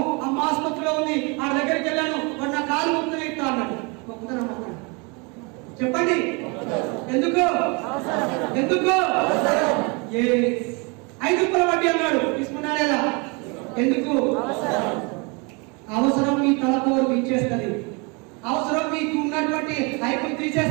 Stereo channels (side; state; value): left; quieter; 30.6 dB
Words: అమ్మ ఆసుపత్రిలో ఉంది, ఆ దగ్గరికి వెళ్ళాను, వాడు నా కాలు మొత్తం ఇస్తా అన్నాడు. మొక్కుతాను చెప్పండి, ఎందుకు 5 రూపాయల వడ్డీ అన్నాడు, తీసుకున్నాడు లేదా? ఎందుకు? అవసరం మీ తలపోరు ఇచ్చేస్తుంది, అవసరం మీకు ఉన్నటువంటి ఐపులు